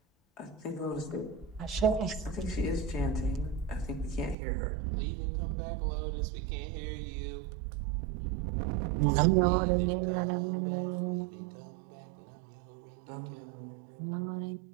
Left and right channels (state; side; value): drops out; left; at 4.4 s